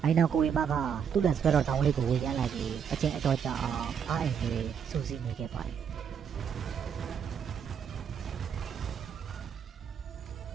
အိုင်နောက်ကိုဝေမကသူ့လက်ဆွဲတော်တောင်းလေးကိုဝေရမ်းလိုက်ပြီးအချင်းအတော်ကြာအောင်အားအိမ်လေးစူးစီးနေခဲ့ပါတယ်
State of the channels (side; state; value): left; quieter; 7.5 dB